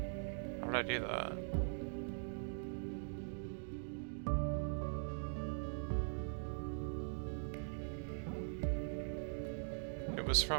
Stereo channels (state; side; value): silent; left; digital silence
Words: How did I do that? It was